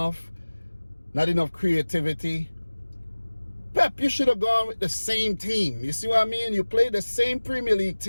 Not enough creativity. Pep, you should have gone with the same team. You see what I mean? You played the same Premier League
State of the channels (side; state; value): both; inverted; correlation -1.00